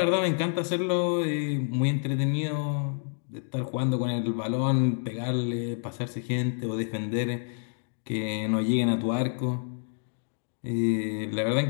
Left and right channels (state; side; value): silent; right; digital silence